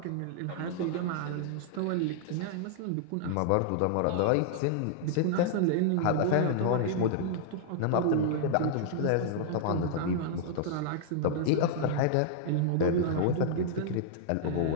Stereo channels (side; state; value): both; different; correlation -0.01